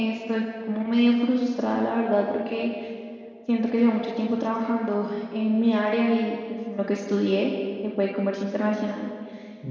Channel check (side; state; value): both; identical; correlation 1.00